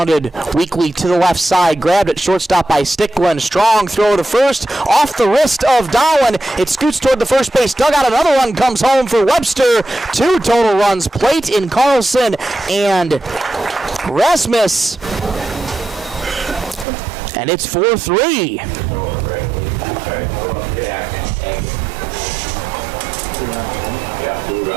weakly to the left side. Grabbed at shortstop by Sticklin. Strong throw to first. Off the wrist of Dowling. It scoots toward the first base dugout. Another one comes home for Webster. 2 total runs. Plate in Carlson and Rasmus. And it's 4-3.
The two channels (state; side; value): drops out; left; at 16.9 s